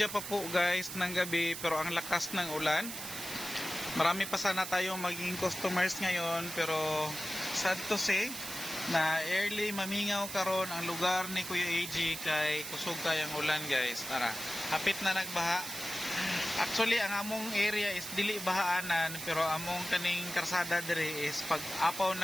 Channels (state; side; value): noise; right; hiss, 7 dB below the sound